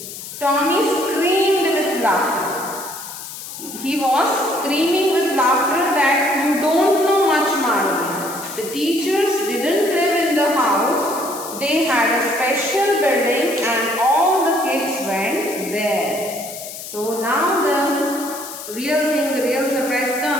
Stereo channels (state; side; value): noise; left; hiss, 11 dB below the sound